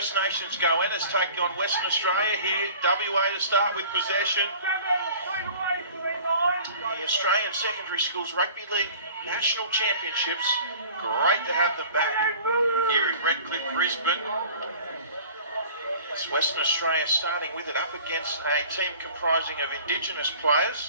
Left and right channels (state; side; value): inverted; both; correlation -0.46